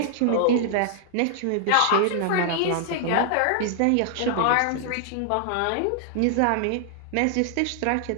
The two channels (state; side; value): different; both; correlation -0.01